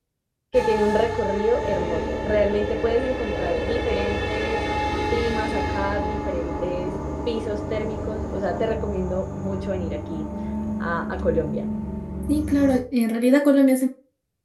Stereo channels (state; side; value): identical; both; correlation 1.00